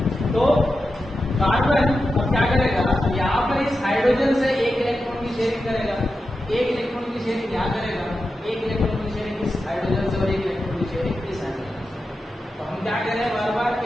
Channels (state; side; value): normal; both; correlation 0.90